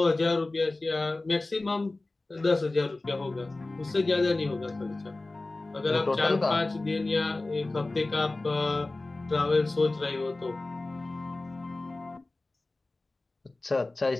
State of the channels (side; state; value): right; quieter; 3.0 dB